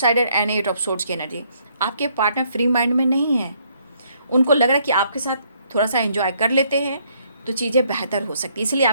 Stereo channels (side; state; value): both; inverted; correlation -0.68